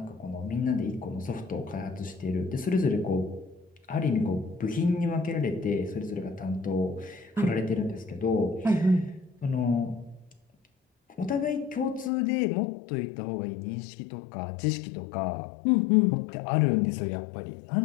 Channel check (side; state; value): right; drops out; at 12.1 s